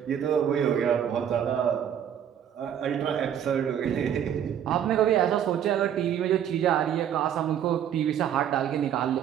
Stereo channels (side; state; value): left; quieter; 9.5 dB